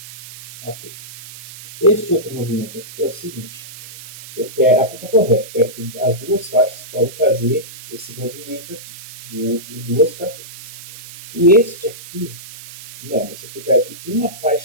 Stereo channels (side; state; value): right; noise; hiss, 16 dB below the sound